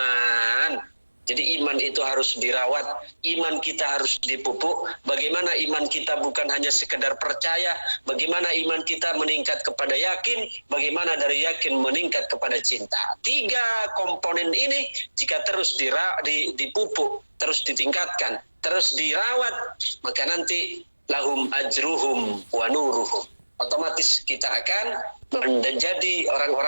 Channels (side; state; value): both; inverted; correlation -1.00